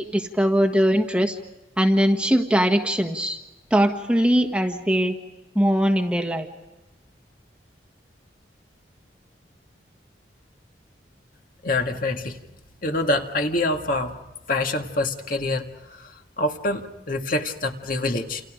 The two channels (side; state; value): both; normal; correlation 0.74